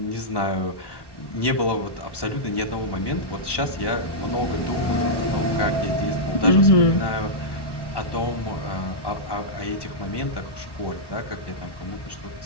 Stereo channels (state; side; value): late; right; 1.1 ms